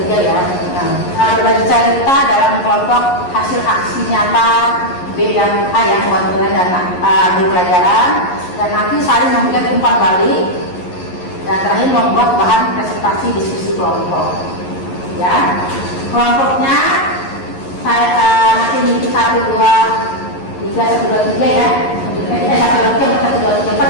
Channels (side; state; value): right; late; 11 ms